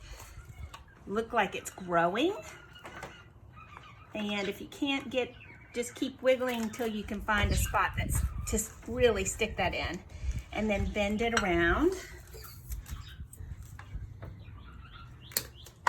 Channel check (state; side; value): identical; both; correlation 1.00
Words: look like it's growing. And if you can't get, just keep wiggling until you can find a spot that's just really stick that in. And then bend it around.